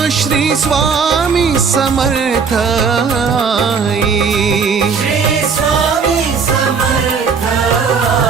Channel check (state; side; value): quieter; left; 5.7 dB